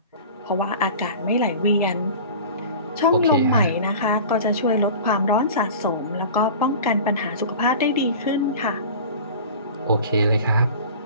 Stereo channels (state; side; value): inverted; both; correlation -0.38